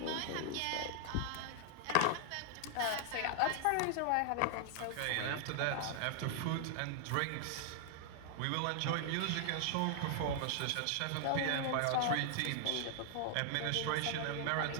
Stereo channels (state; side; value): different; both; correlation 0.00